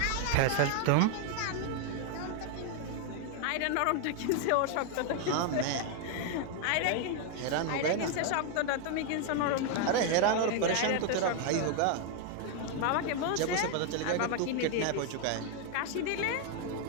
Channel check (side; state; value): both; different; correlation 0.01